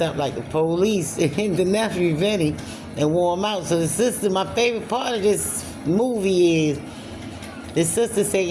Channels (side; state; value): both; identical; correlation 1.00